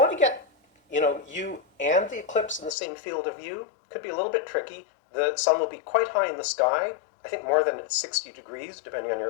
to get, you and the eclipse in the same field of view, could be a little bit tricky. The sun will be quite high in the sky, I think more than 60 degrees, depending on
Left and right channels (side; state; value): right; drops out; at 2.8 s